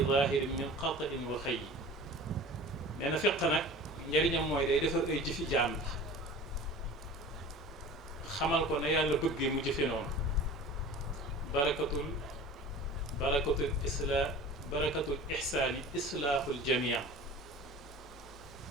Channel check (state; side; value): normal; both; correlation 0.40